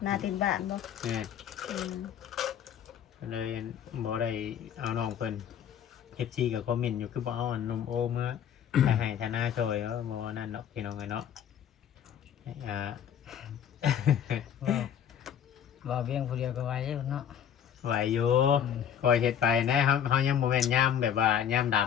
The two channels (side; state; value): right; quieter; 9.1 dB